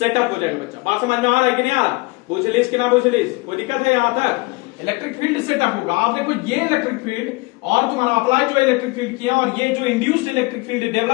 हो जाएगा बच्चा। बात समझ में आ रहा है कि नहीं आ रहा, पूछ लीजिए कि ना पूछ लीजिए, कोई दिक्कत है यहां तक। इलेक्ट्रिक फील्ड सेटअप होगा। आप देखो ये इलेक्ट्रिक फील्ड और तुम्हारा अप्लाई जो इलेक्ट्रिक फील्ड किया और ये जो इंड्यूस्ड इलेक्ट्रिक फील्ड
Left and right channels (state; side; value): quieter; right; 24.9 dB